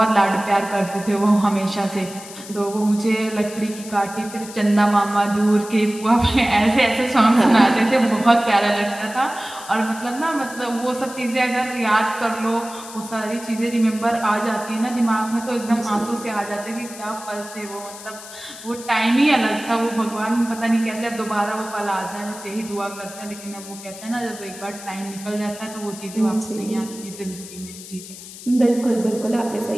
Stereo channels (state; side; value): noise; left; hiss, 15 dB below the sound